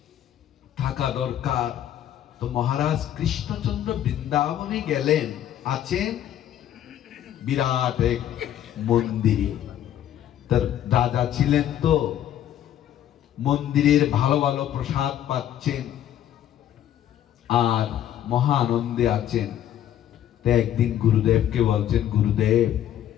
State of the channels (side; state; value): right; quieter; 11.2 dB